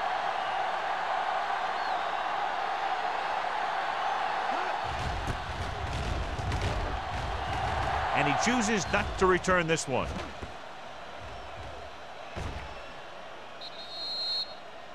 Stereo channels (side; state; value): both; identical; correlation 1.00